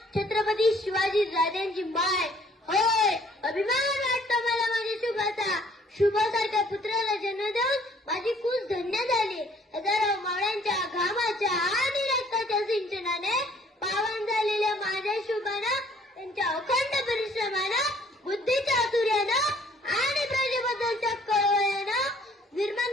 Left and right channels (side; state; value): both; normal; correlation 0.60